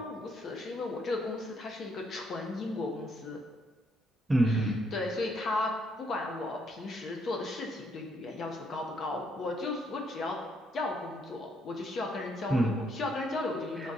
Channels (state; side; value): normal; both; correlation 0.72